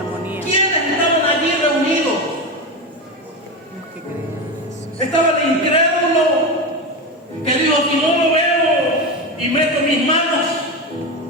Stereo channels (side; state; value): both; normal; correlation 0.18